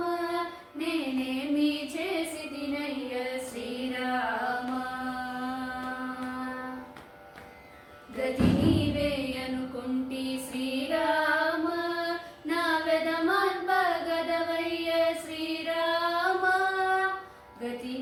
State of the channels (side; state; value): both; identical; correlation 1.00